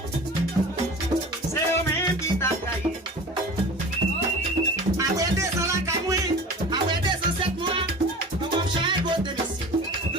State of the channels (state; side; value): normal; both; correlation 0.38